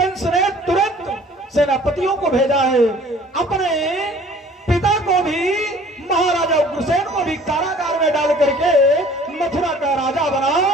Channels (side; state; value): both; normal; correlation 0.52